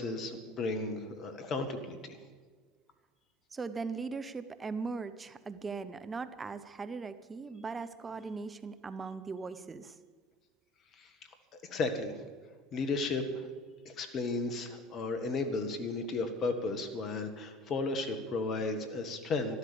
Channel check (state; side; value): normal; both; correlation 0.48